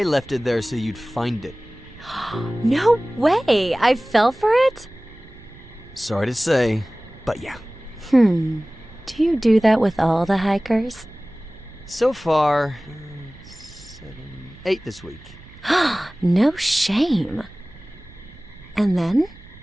left it there so you'd find it. No way! I fell for it? Sorry to say, but yeah. Do you do that with all the hikers? So far, 8 this week. No shame. And then?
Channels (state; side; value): noise; right; rumble, 22 dB below the sound